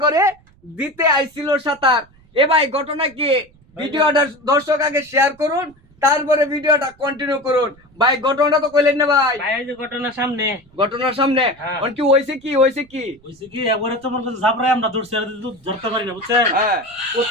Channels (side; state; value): right; noise; rumble, 30 dB below the sound